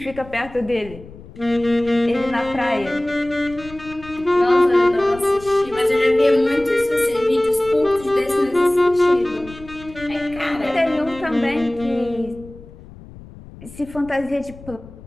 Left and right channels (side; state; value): left; noise; rumble, 18 dB below the sound